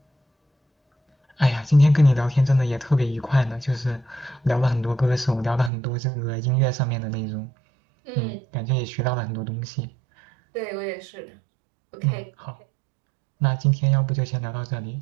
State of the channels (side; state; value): left; drops out; at 5.7 s